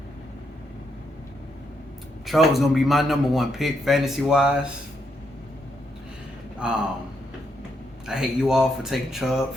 Chubb's going to be my number one pick fantasy-wise. I hate you all for taking Chubb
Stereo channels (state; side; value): normal; both; correlation 0.78